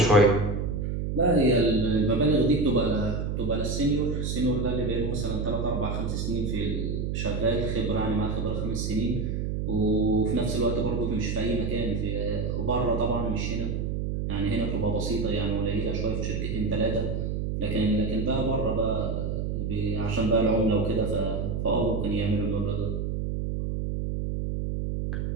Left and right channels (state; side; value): noise; right; hum, 1 dB below the sound